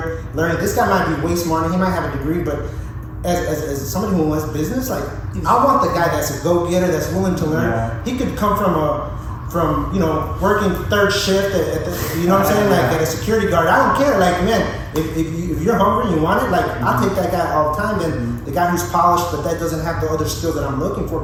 learning. This guy might be way smarter. He might have a degree, but as somebody who wants business, like I want the guy that's a go-getter, that's willing to learn. He could come from working third shift at the, you know what I'm saying, like at a security guard. I don't care. Like, man, if you're hungry and you want it, like I'll take that guy all the time. And the guy who's polished, but that doesn't have the other skill that I'm looking for,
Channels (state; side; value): identical; both; correlation 1.00